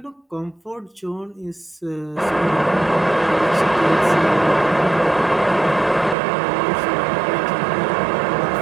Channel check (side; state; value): left; drops out; at 6.2 s